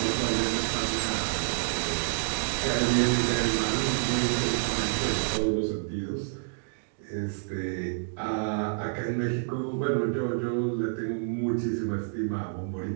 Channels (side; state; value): left; silent; digital silence